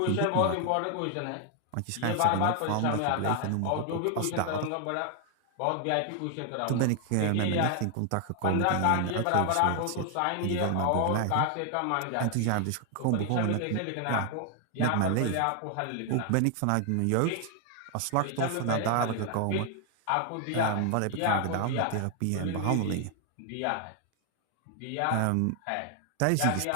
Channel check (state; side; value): different; both; correlation 0.00